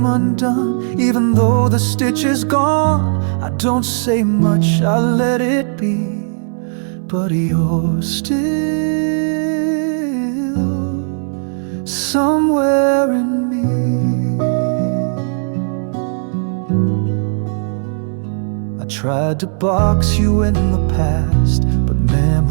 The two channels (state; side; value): silent; left; digital silence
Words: undone. Even though the stitch is gone, I don't say much, I let it be. But you're still somewhere in me. I tried to box you in the past, but